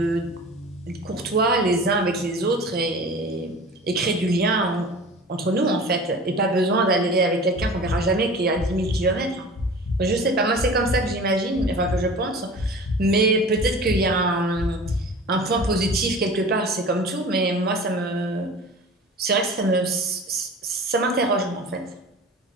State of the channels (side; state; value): both; normal; correlation 0.39